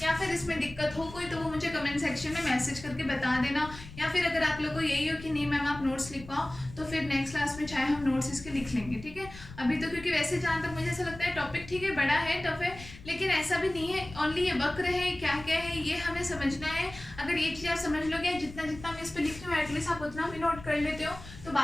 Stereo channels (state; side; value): noise; left; rumble, 16 dB below the sound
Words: या फिर इसमें दिक्कत हो कोई, तो वो मुझे कमेंट सेक्शन में मैसेज करके बता देना। या फिर अगर आप लोग को यही हो कि नहीं मैम आप नोट्स लिखवाओ, तो फिर नेक्स्ट क्लास में चाहे हम नोट्स इसके लिख लेंगे, ठीक है। अभी तो क्योंकि वैसे जहाँ तक मुझे ऐसा लगता है टॉपिक ठीक है, बड़ा है, टफ है, लेकिन ऐसा भी नहीं है ओनली ये वक्र है, क्या क्या है ये हमें समझना है। अगर ये चीज़ आप समझ लोगे, जितना जितना मैं इस पर लिख रही हूँ एटलीस्ट आप उतना भी नोट कर लेते हो, तो